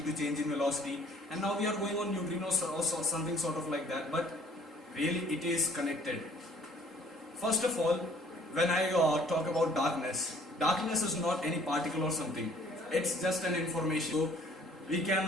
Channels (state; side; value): normal; both; correlation 0.57